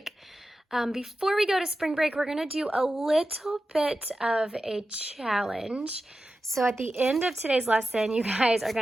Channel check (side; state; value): both; normal; correlation 0.93